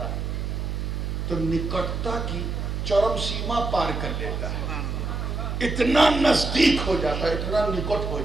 ہے تو نکٹتا کی چرم سیما پار کر لیتا ہے. اتنا نزدیک ہو جاتا ہے, اتنا نکٹ ہو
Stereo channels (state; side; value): noise; right; hum, 3 dB below the sound